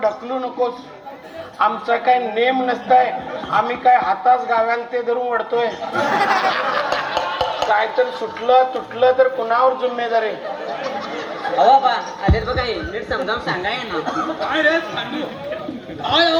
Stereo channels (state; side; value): identical; both; correlation 1.00